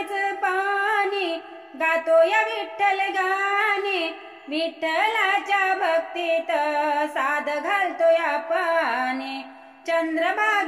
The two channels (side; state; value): both; identical; correlation 1.00